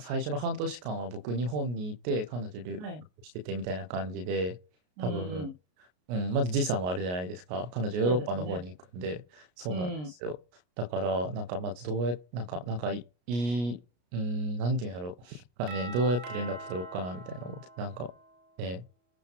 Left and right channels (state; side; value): late; left; 33 ms